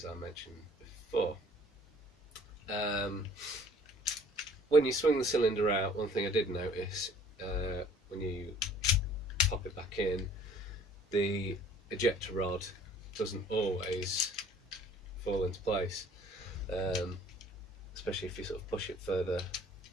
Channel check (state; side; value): normal; both; correlation 0.54